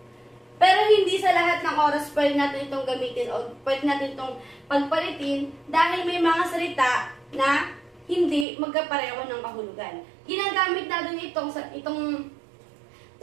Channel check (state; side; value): drops out; left; at 8.5 s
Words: Pero hindi sa lahat ng oras pwede natin itong gamitin o pwede natin itong pagpalitin dahil may mga salita na hindi magkapareho ng kahulugan. Ginagamit natin itong 8